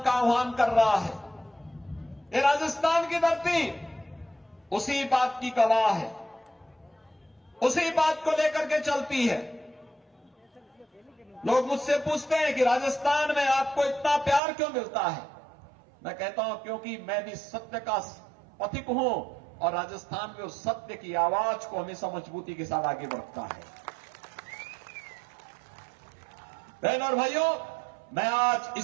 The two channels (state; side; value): drops out; left; at 14.4 s